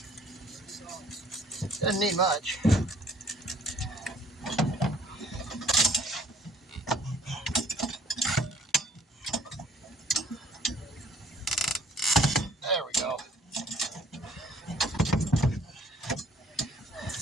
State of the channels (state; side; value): normal; both; correlation 0.59